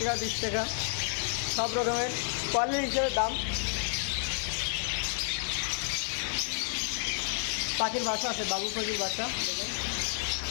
20 টাকা সব রকমের কোয়ালিটি হিসেবে দাম। পাখির বাসা আছে, বাবু পাখির বাসা দেখেন,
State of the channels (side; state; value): right; silent; 57 dB below the other